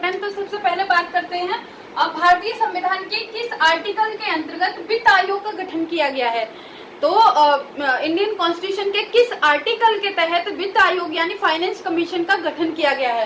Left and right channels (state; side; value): identical; both; correlation 1.00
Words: तो सबसे पहले बात करते हैं भारतीय संविधान के किस आर्टिकल के अंतर्गत वित्त आयोग का गठन किया गया है। तो इंडियन कॉन्स्टिट्यूशन के किस आर्टिकल के तहत वित्त आयोग यानी फाइनेंस कमीशन का गठन किया गया